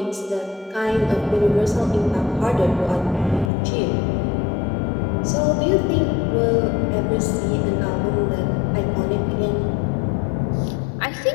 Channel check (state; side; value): drops out; right; at 3.5 s